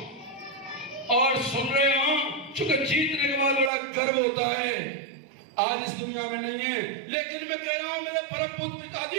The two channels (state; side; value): drops out; left; at 3.7 s